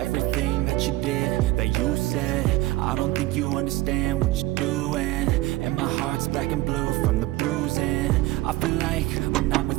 that you did, that you said? I don't think you understand what you're doing, and my heart's black and blue from the bruising. I feel like when I'm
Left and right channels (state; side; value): quieter; left; 18.0 dB